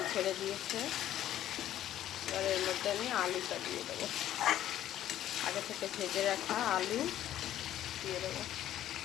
ছেড়ে দিয়েছে। এবার এর মধ্যে আমি আলুটা দিয়ে দেবো। আগে থেকে ভেজে রাখা আলু দিয়ে দেবো।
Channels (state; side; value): quieter; right; 12.2 dB